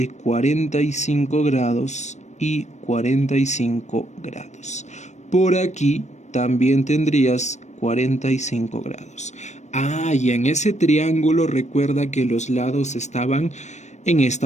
45 grados y 45 grados. Por aquí también tendrías 45 grados. Y en ese triángulo recuerda que los lados estaban en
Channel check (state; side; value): late; right; 0.34 ms